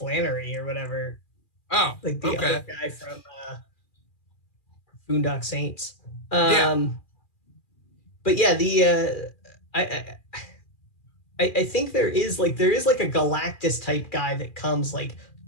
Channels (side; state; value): right; late; 2.4 ms